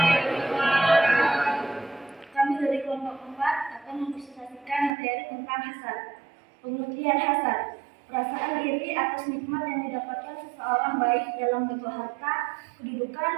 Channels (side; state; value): left; drops out; at 4.9 s